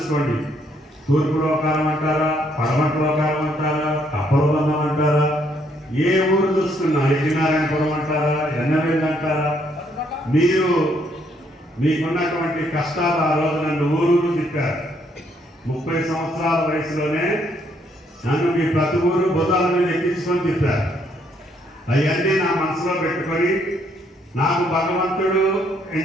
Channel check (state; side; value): normal; both; correlation 0.70